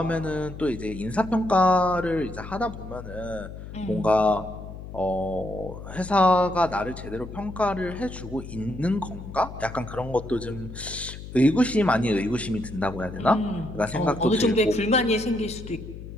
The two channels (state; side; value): noise; left; hum, 12 dB below the sound